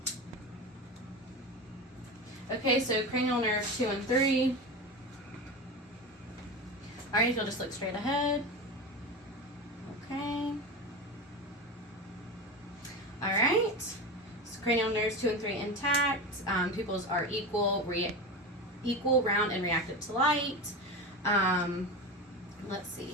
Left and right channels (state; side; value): normal; both; correlation 0.24